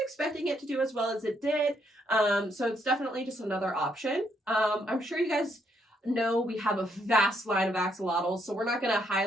expecting it to do as well as it did. So it's definitely just another option. I'm sure you guys know we have a vast line of axolotls, so we're not going to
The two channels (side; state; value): both; normal; correlation 0.74